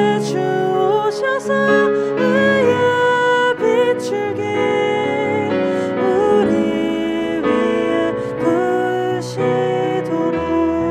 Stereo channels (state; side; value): identical; both; correlation 1.00